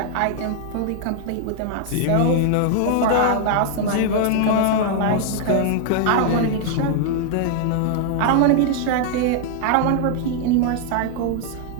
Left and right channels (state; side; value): different; both; correlation 0.00